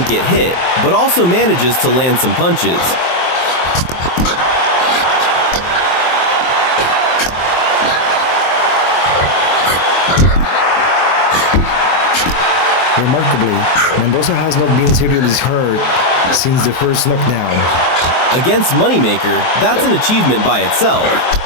get hit, but also manages to land some punches. Remarkably, Mendoza has not been seriously hurt since the first knockdown. Against Moneymaker, that's an achievement by itself.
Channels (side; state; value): right; late; 23 ms